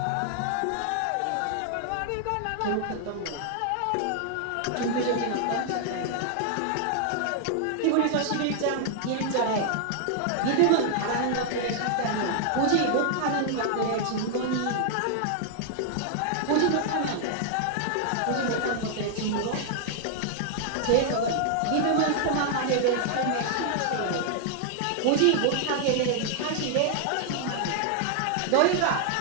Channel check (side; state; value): both; different; correlation 0.00